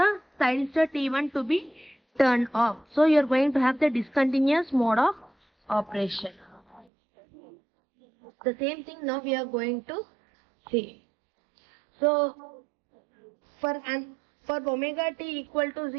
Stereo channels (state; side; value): drops out; left; at 6.9 s